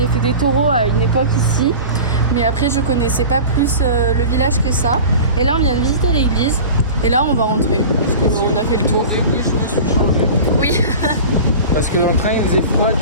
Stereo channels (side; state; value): both; inverted; correlation -0.35